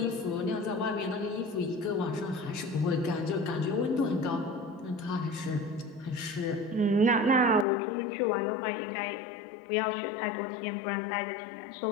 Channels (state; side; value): drops out; right; at 7.7 s